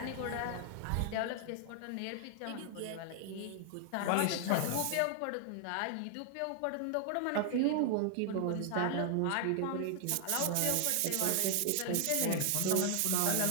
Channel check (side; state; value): both; different; correlation 0.00